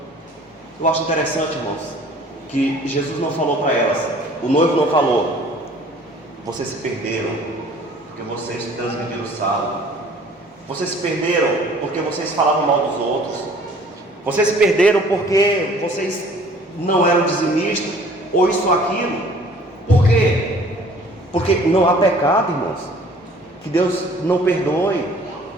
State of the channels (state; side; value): normal; both; correlation 0.53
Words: Eu acho interessante, irmãos, que Jesus não falou para elas, o noivo não falou: vocês se perderam porque vocês transgrediram o sábado, vocês se perderam porque vocês falavam mal dos outros, vocês se perderam porque vocês não eram dizimistas, ou isso ou aquilo. Por quê? Porque não há pecado, irmãos, que Deus não perdoe.